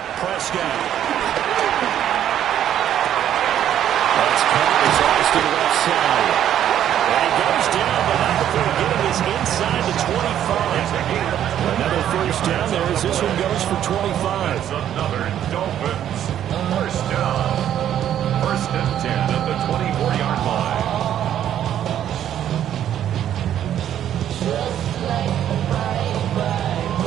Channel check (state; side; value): quieter; left; 10.6 dB